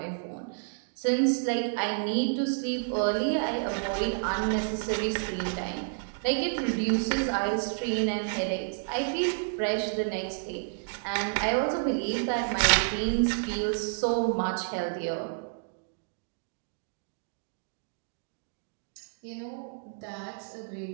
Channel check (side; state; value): left; silent; digital silence